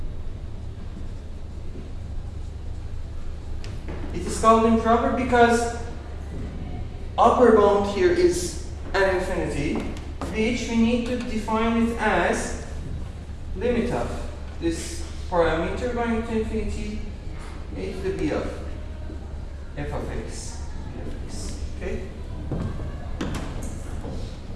It is called improper because upper bound here is an infinity, which we need to define it as limit of this parameter going to infinity a to the b of f of x. Okay?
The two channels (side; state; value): both; identical; correlation 1.00